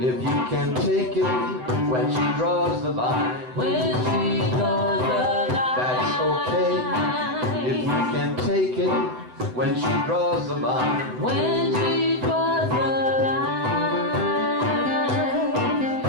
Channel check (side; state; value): left; late; 7.9 ms